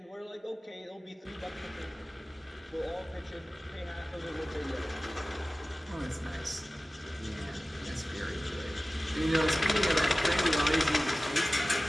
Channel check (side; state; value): both; normal; correlation 0.97